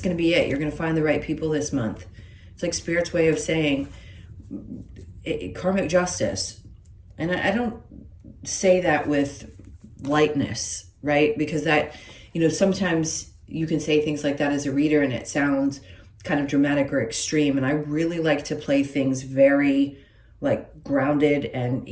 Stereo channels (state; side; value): identical; both; correlation 1.00